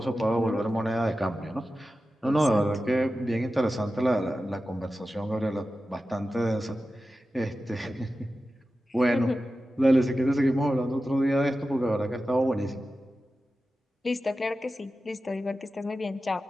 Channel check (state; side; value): normal; both; correlation 0.93